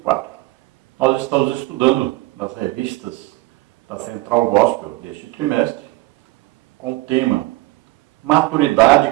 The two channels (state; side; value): quieter; left; 20.4 dB